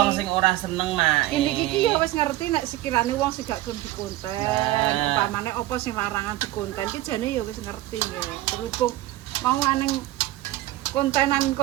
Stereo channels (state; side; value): quieter; left; 16.1 dB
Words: sing ora seneng, Mak. Ini iki ya wis ngerti nek sekirane wong sing gak gelem dikonten, Nah. upamane apa sing larangan dikonten ki jane ya wis ngerti ya. Berhubung mau aneng